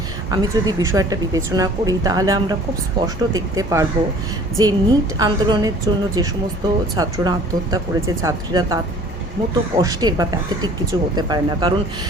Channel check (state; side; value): normal; both; correlation 0.50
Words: আমি যদি বিষয়টা বিবেচনা করি, তাহলে আমরা খুব স্পষ্ট দেখতে পারবো যে নিট আন্দোলনের জন্য যে সমস্ত ছাত্ররা আত্মহত্যা করেছে, ছাত্রীরা তার মতো কষ্টের বা প্যাথেটিক কিছু হতে পারে না। কারণ